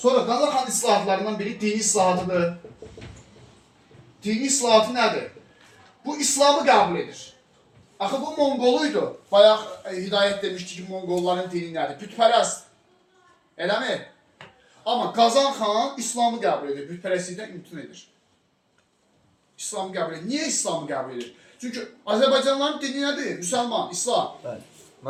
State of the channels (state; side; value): identical; both; correlation 1.00